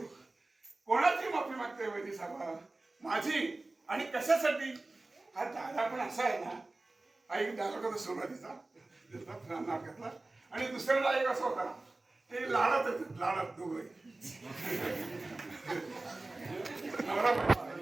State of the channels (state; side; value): quieter; left; 3.1 dB